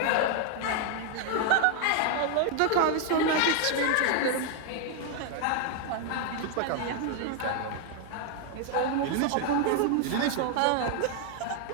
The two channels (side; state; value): both; different; correlation 0.00